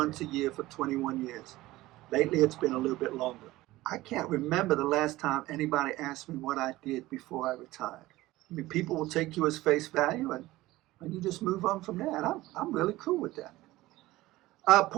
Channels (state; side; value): quieter; left; 17.8 dB